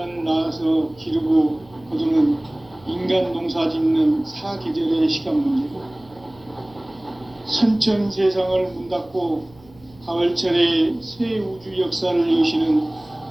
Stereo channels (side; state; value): right; noise; hum, 26 dB below the sound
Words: 낳아서 기르고 거두는 인간 농사 짓는 사계절의 시간 문제고, 선천 세상을 문 닫고 가을철에 새 우주 역사를 여시는